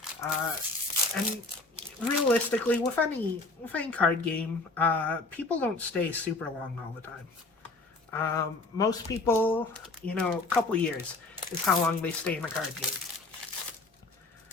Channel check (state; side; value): quieter; right; 3.3 dB